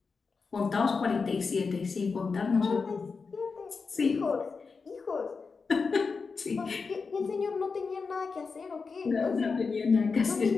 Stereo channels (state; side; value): quieter; right; 4.8 dB